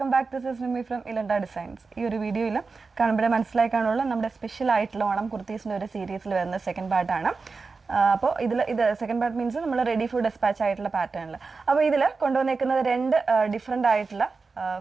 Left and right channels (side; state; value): left; quieter; 4.4 dB